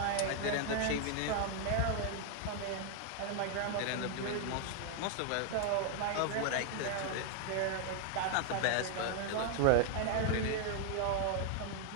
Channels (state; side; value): different; both; correlation 0.00